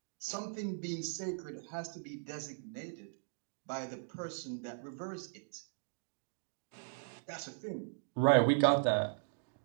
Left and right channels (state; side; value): silent; left; digital silence